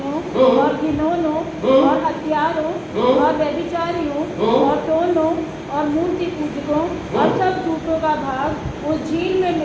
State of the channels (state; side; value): identical; both; correlation 1.00